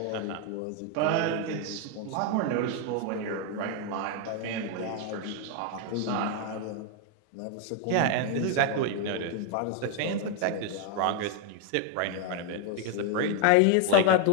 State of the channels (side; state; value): both; different; correlation 0.00